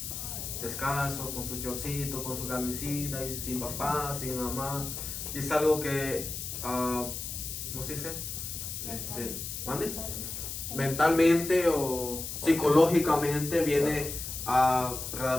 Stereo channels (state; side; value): noise; left; hiss, 6 dB below the sound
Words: descalzo, con su chorcito, con su camisita, y sin papá, sin mamá. Y es algo que, ¿cómo se dice? ¿Mande? Mentalmente o psicológicamente viene a